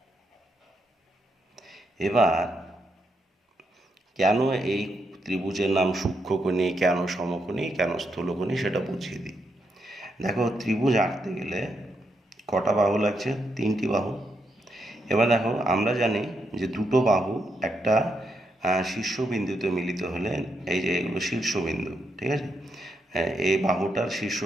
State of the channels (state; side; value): normal; both; correlation 0.80